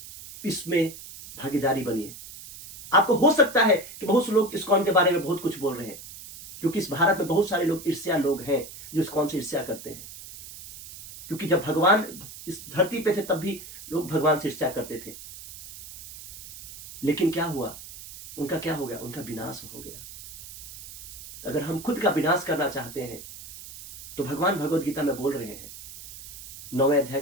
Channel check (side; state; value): right; noise; hiss, 14 dB below the sound